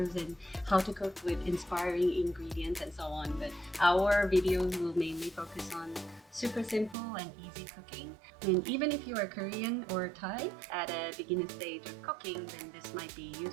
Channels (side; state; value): left; drops out; at 7.0 s